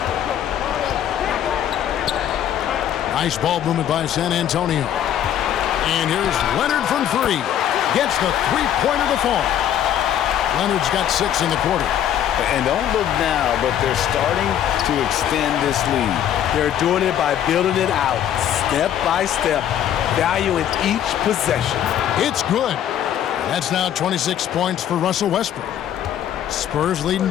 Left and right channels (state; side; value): quieter; right; 10.4 dB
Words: Nice ball movement by San Antonio. And here's Leonard from 3. Gets the three-pointer to fall. Leonard's got 6 in the quarter. And don't look now, but they're starting to extend this lead. They're doing it by building it out, step by step, valuing each possession. It's good. That's now 26 points for Russell Westbrook. Spurs leading